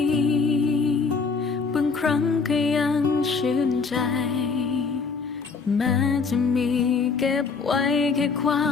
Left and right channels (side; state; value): right; quieter; 4.9 dB